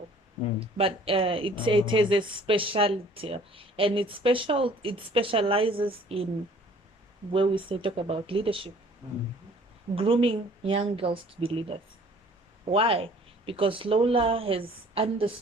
But it has a specialty, and it specializes in where we talk about leadership, grooming young girls to be leaders. Why? Because Lola has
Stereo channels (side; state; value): both; normal; correlation 0.54